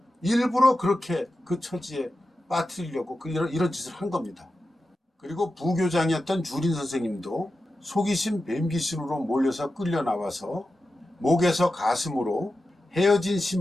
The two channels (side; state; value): both; normal; correlation 0.91